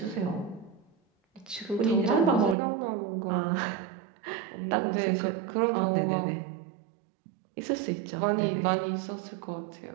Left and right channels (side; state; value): left; drops out; at 2.6 s